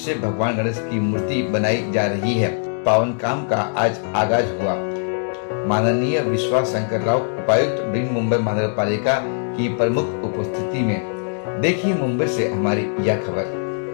भगवान गणेश की मूर्ति बनाई जा रही है। पावन काम का आज आगाज हुआ। माननीय विश्वास शंकर राव उपायुक्त बृहन मुंबई महानगर पालिका की प्रमुख उपस्थिति में। देखिए मुंबई से हमारी यह खबर।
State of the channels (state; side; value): silent; right; 65 dB below the other